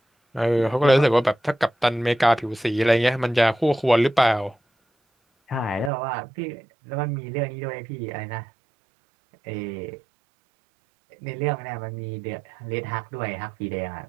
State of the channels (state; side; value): drops out; left; at 5.9 s